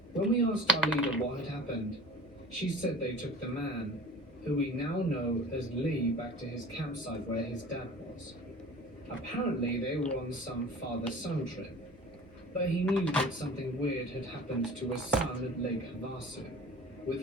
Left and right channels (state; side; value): normal; both; correlation 0.40